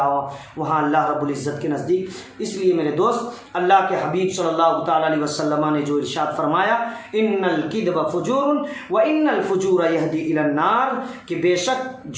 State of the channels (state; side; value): identical; both; correlation 1.00